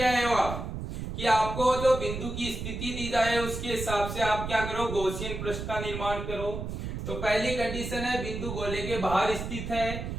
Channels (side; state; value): right; noise; rumble, 6 dB below the sound